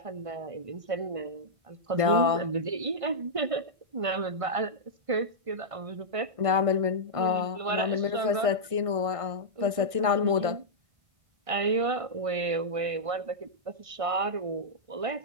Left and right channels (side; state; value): left; late; 1.5 ms